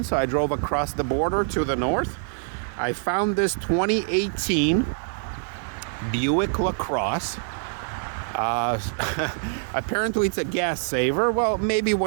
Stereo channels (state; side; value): silent; left; digital silence